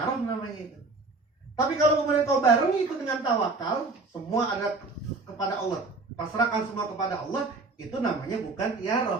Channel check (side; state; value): left; quieter; 3.6 dB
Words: namanya itu. Tapi kalau kemudian kau barengi itu dengan tawakal, semua ada kepada Allah, pasrahkan semua kepada Allah, itu namanya bukan